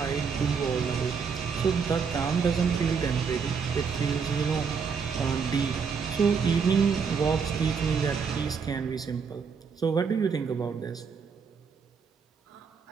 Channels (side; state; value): left; quieter; 6.0 dB